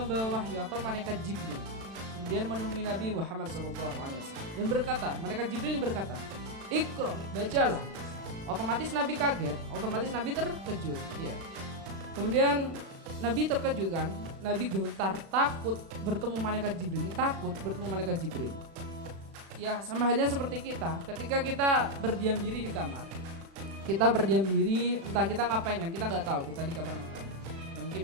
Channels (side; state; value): left; late; 36 ms